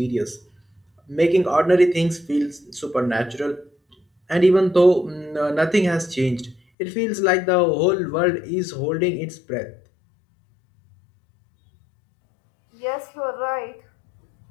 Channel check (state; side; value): drops out; right; at 6.6 s